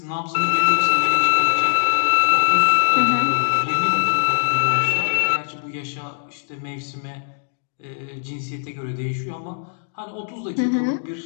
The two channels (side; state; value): right; silent; digital silence